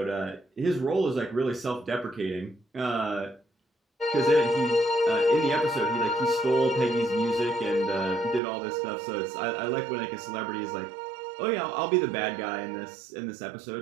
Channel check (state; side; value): drops out; left; at 8.4 s